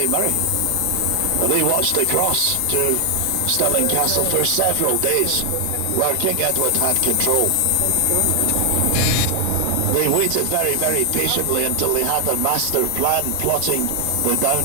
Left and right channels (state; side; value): different; both; correlation 0.00